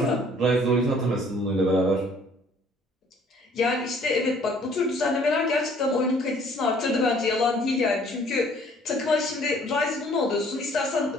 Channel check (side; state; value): both; normal; correlation 0.58